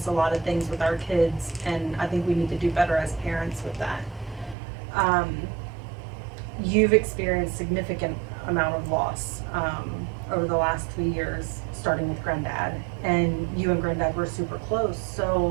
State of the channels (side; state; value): left; drops out; at 4.5 s